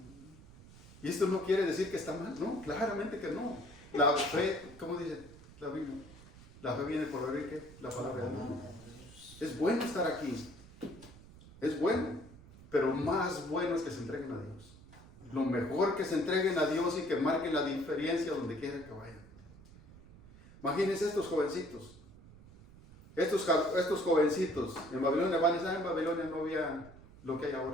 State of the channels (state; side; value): noise; right; rumble, 20 dB below the sound